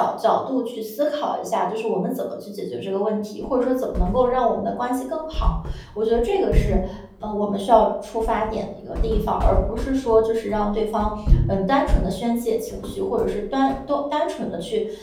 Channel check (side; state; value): both; identical; correlation 1.00